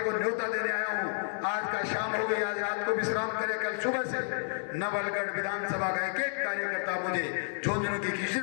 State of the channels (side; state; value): right; silent; 57 dB below the other